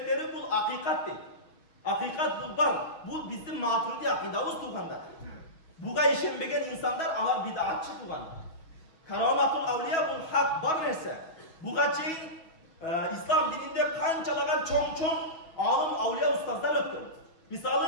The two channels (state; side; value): late; right; 6.2 ms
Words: bu hakikat deydi. Hakikat bu var. Bu bizim Maturidi akidamız tuğanda. Buga işenbegen insanlar alar bid'atçı tuğanda. Kerametul avliya bu hak var neyse. Buga çeyin İslam dininde kançalagan çoğun alım avliya ustazlar öttü.